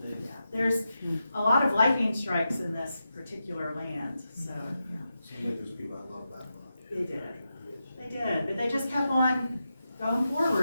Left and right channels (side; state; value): both; inverted; correlation -0.89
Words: thing. there's a lot of lightning strikes in this particular land, so. They did. They did, but they just kept on going